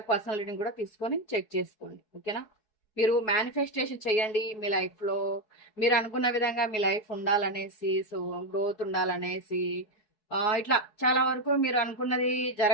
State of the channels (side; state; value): right; late; 4.7 ms